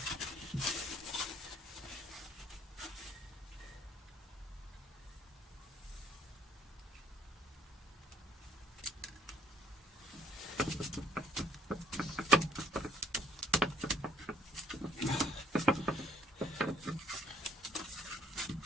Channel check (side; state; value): both; normal; correlation 0.64